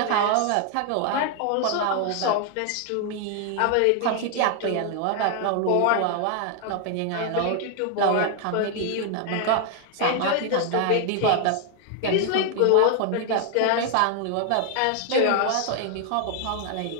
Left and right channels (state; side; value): different; both; correlation 0.00